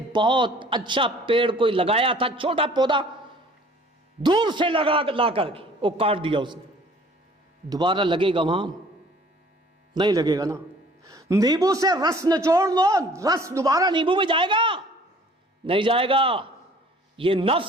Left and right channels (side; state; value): both; normal; correlation 0.53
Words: بہت اچھا پیڑ کوئی لگایا تھا، چھوٹا پودا دور سے لا کر کے وہ کاٹ دیا اس نے، دوبارہ لگے گا وہاں، نہیں لگے گا نا. نیبو سے رس نچوڑ لو، رس دوبارہ نیبو میں جائے گا، نہیں جائے گا. یہ